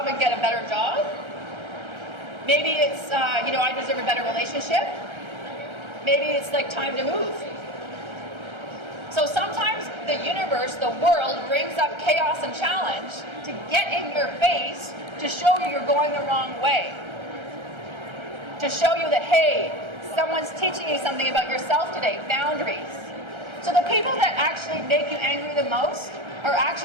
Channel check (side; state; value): left; late; 1.3 ms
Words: and get a better job. Maybe it's, I deserve a better relationship. Maybe it's like time to move. So sometimes the universe, the world, brings up chaos and challenge to get in your face to show you you're going the wrong way. To show you that, hey, someone's teaching you something about yourself today, boundaries. So the people that actually make you angry the most are